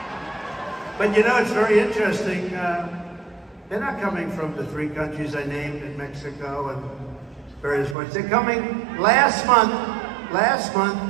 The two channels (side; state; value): left; drops out; at 8.0 s